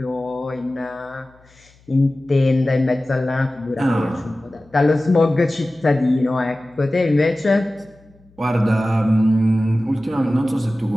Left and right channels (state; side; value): noise; left; hum, 30 dB below the sound